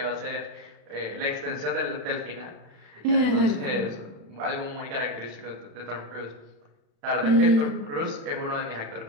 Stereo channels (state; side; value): late; left; 36 ms